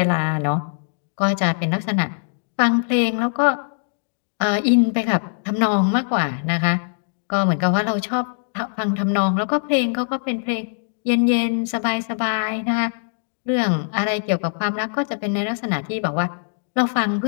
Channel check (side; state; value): right; silent; digital silence